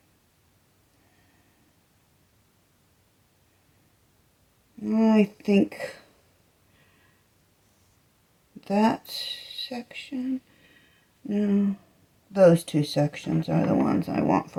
I think that section, no, those two sections are the ones I want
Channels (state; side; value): identical; both; correlation 1.00